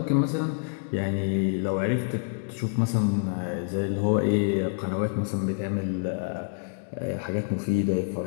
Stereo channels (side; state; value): right; silent; digital silence